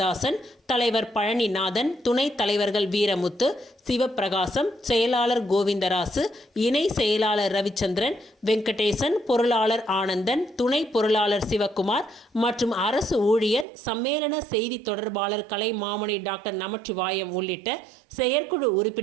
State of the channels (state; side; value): drops out; left; at 13.7 s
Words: தலைவர் பழனிநாதன், துணைத் தலைவர்கள் வீரமுத்து, சிவப்பிரகாசம், செயலாளர் கோவிந்தராசு, இணை செயலாளர் ரவிச்சந்திரன், வெங்கடேசன், பொருளாளர் ஆனந்தன், துணை பொருளாளர் சிவக்குமார் மற்றும் அரசு ஊழியர் சம்மேளன செய்தி தொடர்பாளர் கலைமாமணி டாக்டர் நமச்சிவாயம் உள்ளிட்ட செயற்குழு